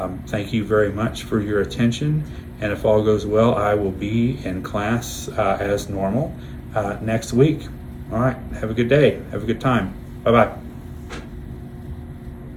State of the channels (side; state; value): both; identical; correlation 1.00